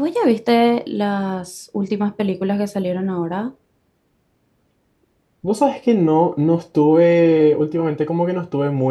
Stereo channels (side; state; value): both; identical; correlation 1.00